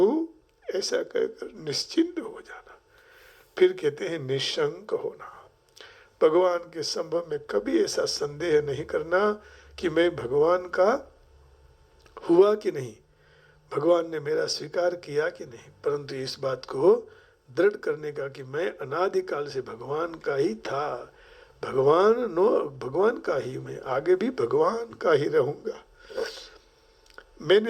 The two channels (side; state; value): both; identical; correlation 1.00